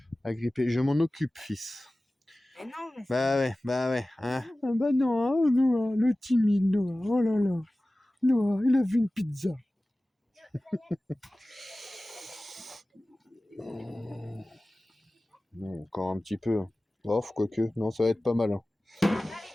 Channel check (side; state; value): both; normal; correlation 0.97